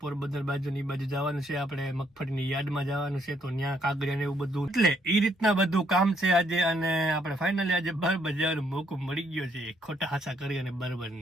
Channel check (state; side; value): normal; both; correlation 0.71